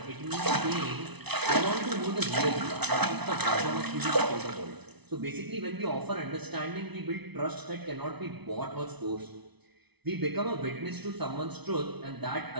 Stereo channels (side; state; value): left; late; 0.99 ms